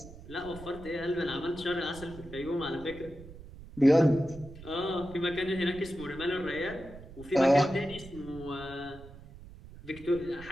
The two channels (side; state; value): right; noise; rumble, 16 dB below the sound